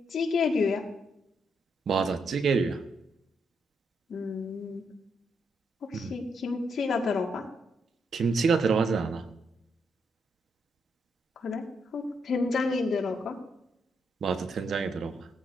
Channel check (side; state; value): both; normal; correlation 0.78